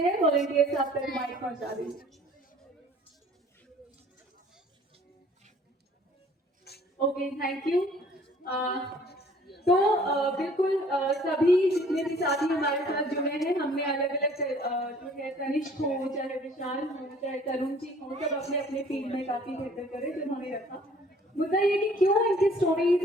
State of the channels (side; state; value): both; normal; correlation 0.55